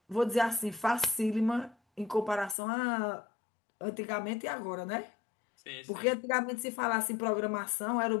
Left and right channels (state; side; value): drops out; right; at 2.6 s